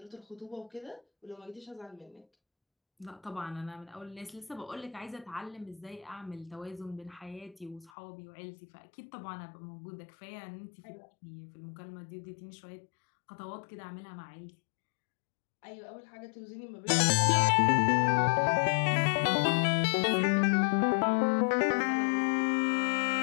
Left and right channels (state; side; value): drops out; right; at 7.9 s